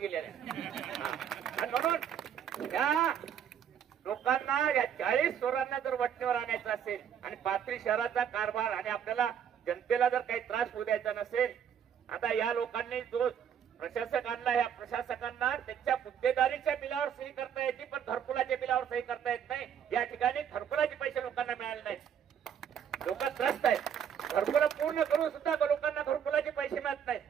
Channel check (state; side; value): quieter; left; 8.6 dB